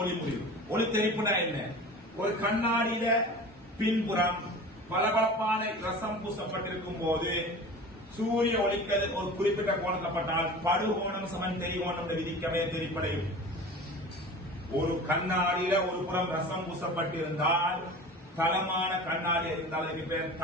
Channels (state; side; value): normal; both; correlation 0.37